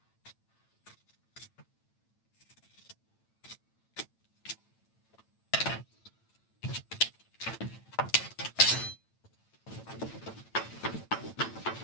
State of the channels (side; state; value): right; late; 8.9 ms